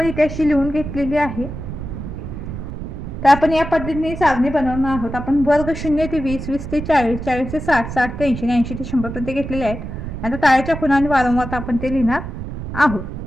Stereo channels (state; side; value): noise; right; rumble, 8 dB below the sound